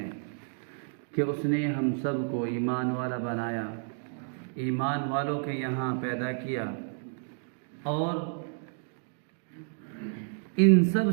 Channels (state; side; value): silent; left; 57 dB below the other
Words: کہ اس نے ہم سب کو ایمان والا بنایا، ایمان والوں کے یہاں پیدا کیا، اور ان سب